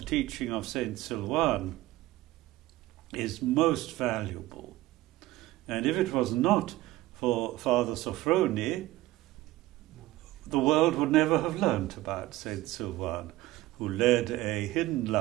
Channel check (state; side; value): quieter; left; 17.0 dB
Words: teaching of Saint Sylvan is most valuable. And if it was not for Father Sophrony, the world would never have learnt about Saint Sylvan, who led a hidden